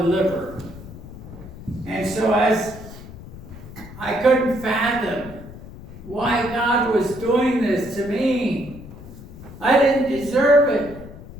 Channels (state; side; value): noise; left; rumble, 15 dB below the sound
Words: liver. And so as I couldn't fathom why God was doing this to me, I didn't deserve it.